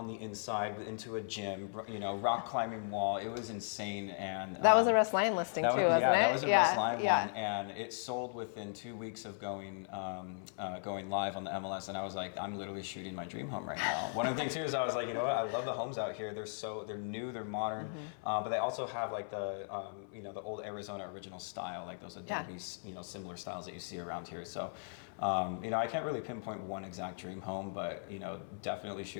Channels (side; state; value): right; silent; 53 dB below the other